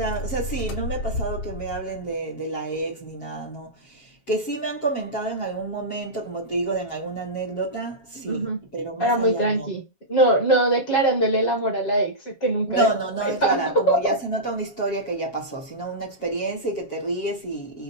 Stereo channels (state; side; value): late; right; 7.4 ms